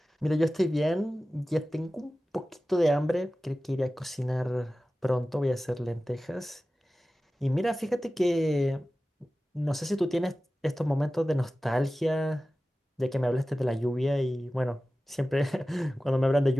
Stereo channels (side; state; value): both; normal; correlation 0.96